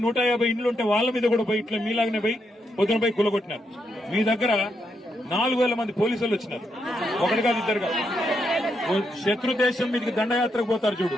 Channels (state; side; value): normal; both; correlation 0.80